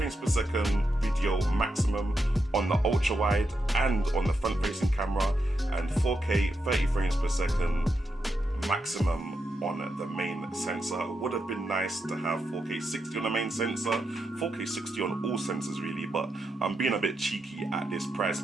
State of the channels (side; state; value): both; normal; correlation 0.84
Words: per second video maximum on the ultra wide and on the front facing camera, and 4K 30 frames per second maximum on the main sensor. It would have been nice to have 4K 60 on the main sensor, 4K 60 on all sensors really, but I'm being a bit cheeky at this price